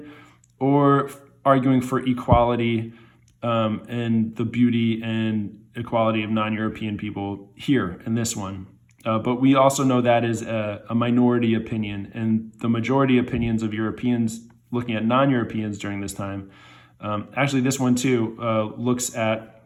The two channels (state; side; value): identical; both; correlation 1.00